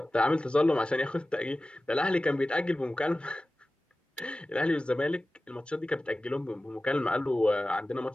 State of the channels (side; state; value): both; normal; correlation 0.96